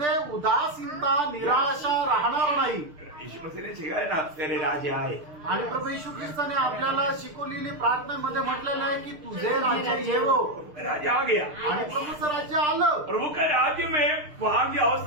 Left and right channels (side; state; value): left; late; 6.6 ms